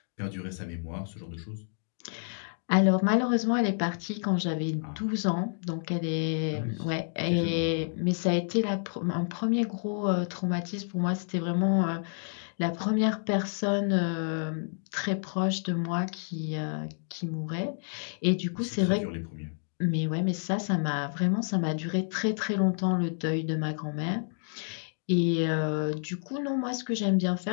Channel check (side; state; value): right; silent; digital silence